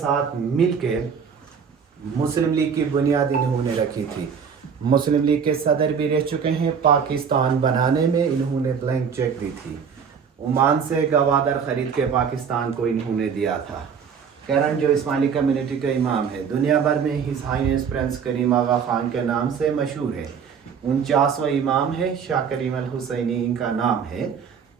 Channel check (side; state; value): left; quieter; 6.8 dB